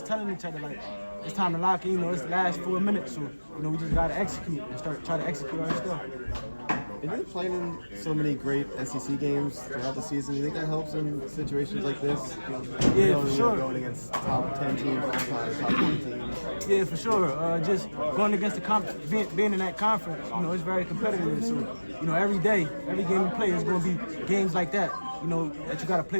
telling each other like, it's time to lock in. You know, it's the last 4 minutes. So you know, we just gotta execute and try to execute our stuff. And you're playing in so many great SEC games throughout the season. Do you think that helps in situations like this? Yeah, for sure. Going against top 10 teams all the time, top 20 teams. Yeah, for sure. Just going against the being in that conference, you know, it's very competitive. So, you know, every day, every game we play is going to be games like that. You know, that you got to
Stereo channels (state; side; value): inverted; both; correlation -1.00